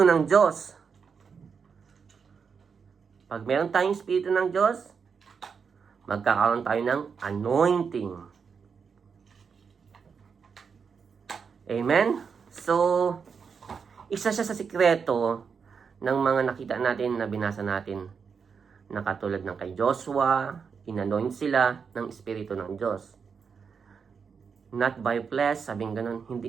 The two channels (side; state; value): left; quieter; 6.0 dB